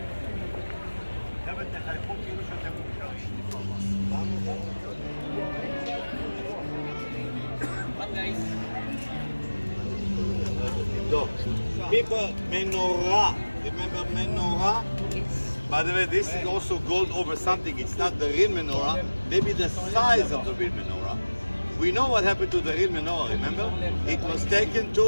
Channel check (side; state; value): both; inverted; correlation -1.00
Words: People, menorah. Remember menorah? Yes. By the way, this is also gold over something. It's not the real menorah. Maybe the size of the real menorah. We know what happened to the real menorah. Remember? It was taken